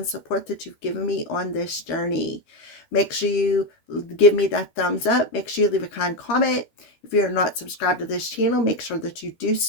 support that you've given me on this journey. Make sure you give me that thumbs up. Make sure you leave a kind comment. If you're not subscribed to this channel, make sure that you do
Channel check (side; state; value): right; late; 13 ms